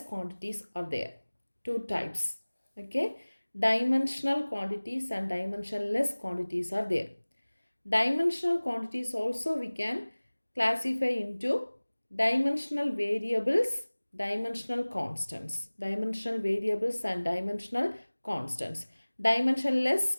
quantities are there. Two types. Okay. Dimensional quantities and dimensionless quantities are there. Dimensional quantities also we can classify into dimensional variables, dimensional constants. Dimensional variables and dimensional constants.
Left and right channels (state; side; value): inverted; both; correlation -1.00